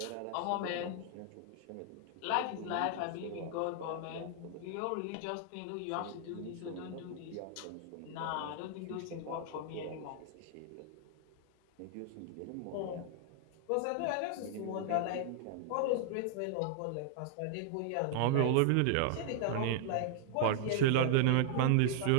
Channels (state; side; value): different; both; correlation 0.00